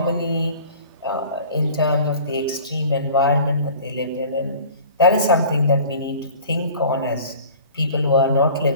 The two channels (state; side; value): inverted; both; correlation -0.44